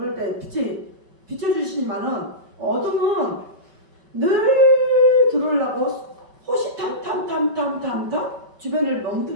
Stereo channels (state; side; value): late; left; 5.2 ms